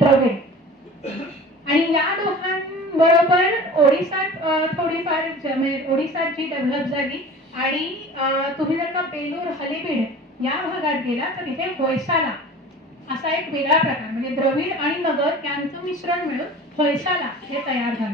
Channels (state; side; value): normal; both; correlation 0.40